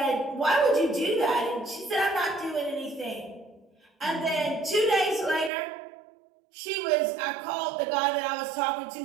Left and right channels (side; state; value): left; drops out; at 5.5 s